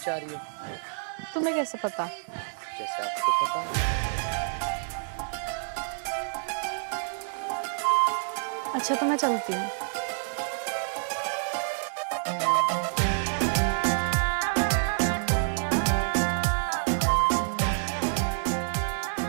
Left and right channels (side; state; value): left; silent; digital silence